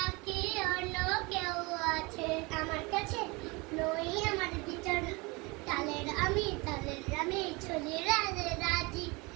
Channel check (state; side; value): quieter; left; 26.1 dB